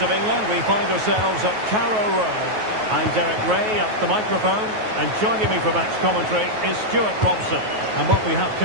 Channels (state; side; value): late; left; 9.3 ms